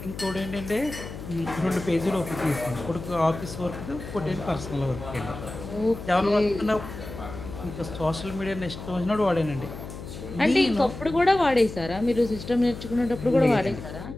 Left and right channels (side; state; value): left; noise; hum, 11 dB below the sound